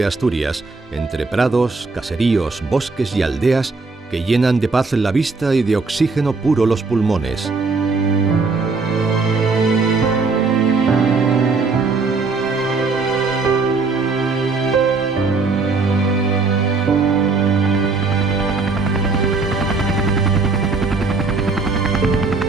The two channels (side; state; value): left; quieter; 4.1 dB